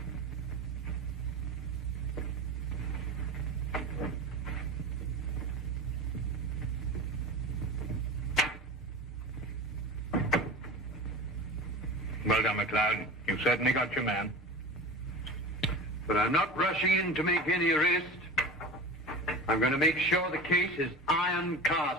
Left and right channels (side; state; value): both; normal; correlation 0.32